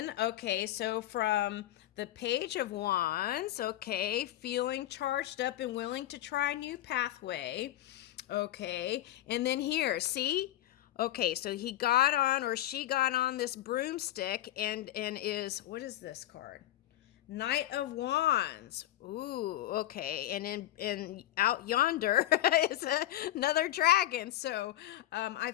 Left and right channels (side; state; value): right; quieter; 14.0 dB